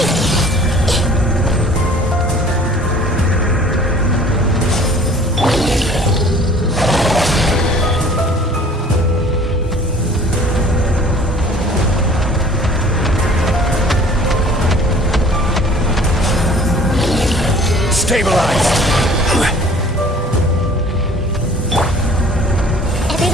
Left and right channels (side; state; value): both; normal; correlation 0.51